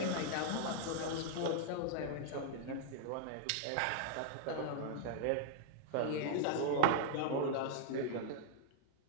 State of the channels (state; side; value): different; both; correlation -0.01